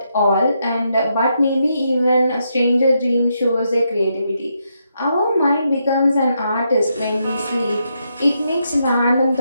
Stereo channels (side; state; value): both; inverted; correlation -0.80